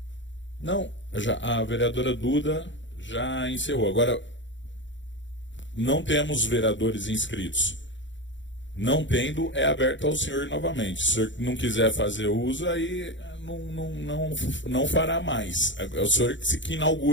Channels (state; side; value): late; right; 0.54 ms